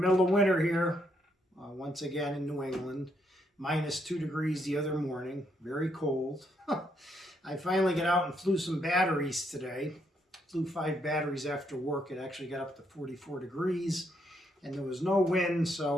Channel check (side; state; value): both; normal; correlation 0.75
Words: of winter here, once again in New England. -2 degrees the other morning, very cold. I finally got out and flew some batteries today. Flew 5 batteries after work. It actually got up to 44 degrees and there was no wind,